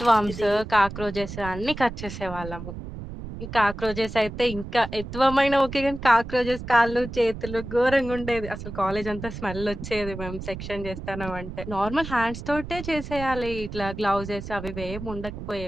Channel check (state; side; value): noise; right; rumble, 10 dB below the sound